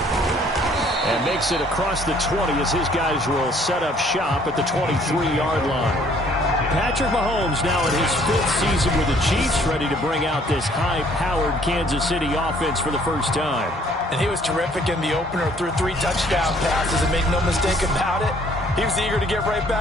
And makes it across the 20 as his guys will set up shop at the 23-yard line. Patrick Mahomes now in his 5th season with the Chiefs, ready to bring out this high-powered Kansas City offense for the first time. And he was terrific in the opener, threw 3 touchdown passes, and make no mistake about it, he was eager to get right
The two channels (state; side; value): normal; both; correlation 0.60